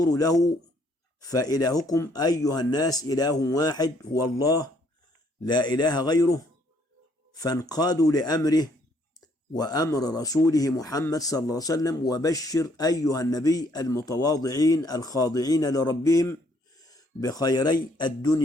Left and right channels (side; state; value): both; normal; correlation 0.66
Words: له. فإلهكم أيها الناس إله واحد هو الله لا إله غيره، فانقادوا لأمره وأمر رسوله محمد صلى الله عليه وسلم. وبشر أيها النبي المتواضعين الخاضعين لربهم بخيري